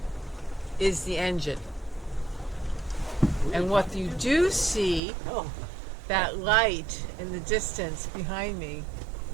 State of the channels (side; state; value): left; drops out; at 5.0 s